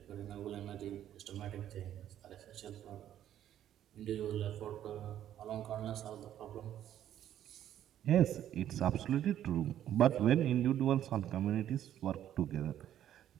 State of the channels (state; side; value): quieter; left; 11.2 dB